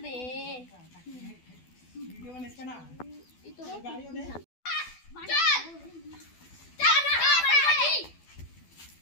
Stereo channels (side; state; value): right; late; 12 ms